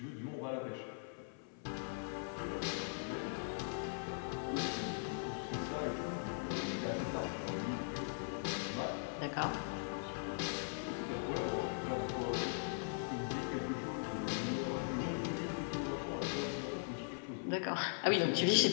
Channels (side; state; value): right; silent; 51 dB below the other